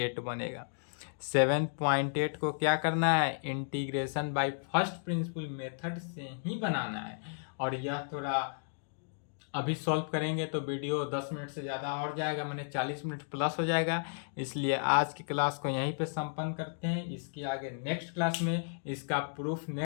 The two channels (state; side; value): silent; right; digital silence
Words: बनेगा। 7.8 को क्या करना है, integration by first principle method से ही बनाना है। और यह थोड़ा अभी सॉल्व करेंगे तो वीडियो 10 मिनट से ज़्यादा और जाएगा, मैंने 40 मिनट प्लस हो जाएगा। इसलिए आज की क्लास को यहीं पे संपन्न करते हैं। इसके आगे नेक्स्ट क्लास में इसका प्रूफ